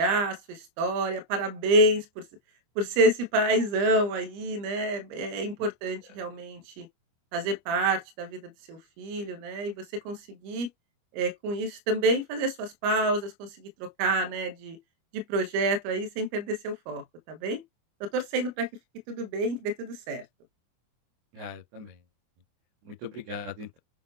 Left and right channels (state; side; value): late; left; 25 ms